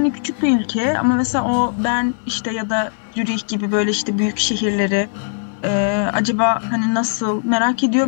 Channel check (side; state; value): right; silent; digital silence